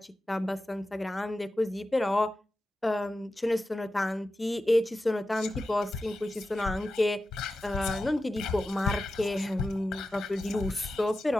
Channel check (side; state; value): both; normal; correlation 0.92